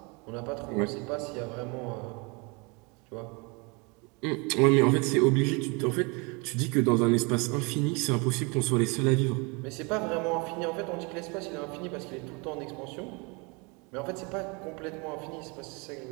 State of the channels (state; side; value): quieter; left; 30.2 dB